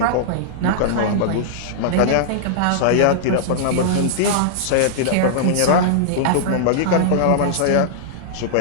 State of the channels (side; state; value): both; different; correlation -0.01